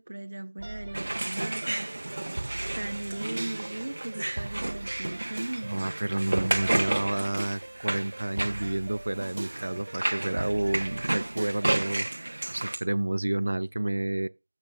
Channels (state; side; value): inverted; both; correlation -1.00